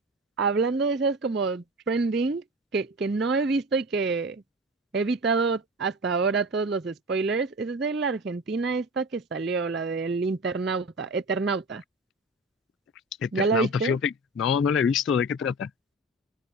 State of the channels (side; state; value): both; normal; correlation 0.31